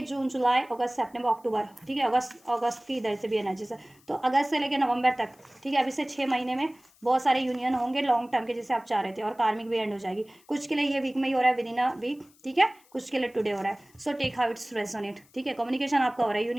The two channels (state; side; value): noise; left; hiss, 30 dB below the sound